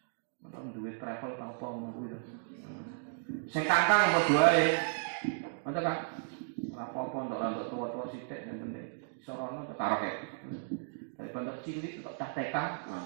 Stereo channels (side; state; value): left; silent; digital silence